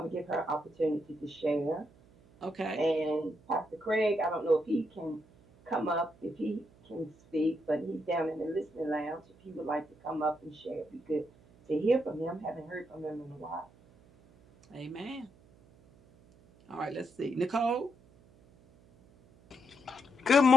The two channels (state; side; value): noise; right; hum, 27 dB below the sound